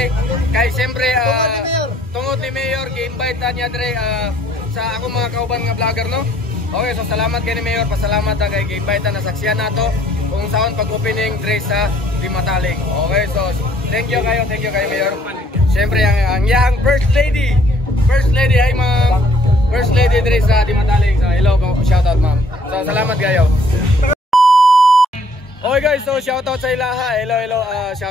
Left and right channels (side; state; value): both; normal; correlation 0.62